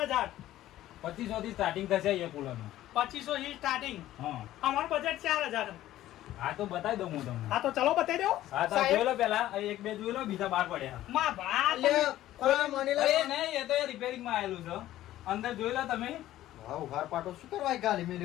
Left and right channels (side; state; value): right; quieter; 14.1 dB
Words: 2500 થી સ્ટાર્ટિંગ થશે એ કુલર નું 2500 થી સ્ટાર્ટિંગ હા અમારું બજેટ 4000 હા તો બતાવી દઉં હું તમને હા તો ચલો બતાવી દો હા તો જોઈ લો પેલા એક બે જોઈ લો બીજા બાર પડ્યા માં ભા લે કોઈ મણીલાલ અરે નહીં એ તો રિપેરિંગ માં આવેલું છે અંદર જોઈ લો તમે હા ઉઘાર પાટો શું કરવા ગાલી